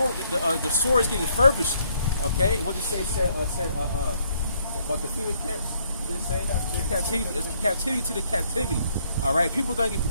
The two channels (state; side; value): inverted; both; correlation -0.69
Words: is getting furbished. Okay. What did it say? Said about the FEMA camps. Did it say? It's captivity to the captivity. All right. People are going to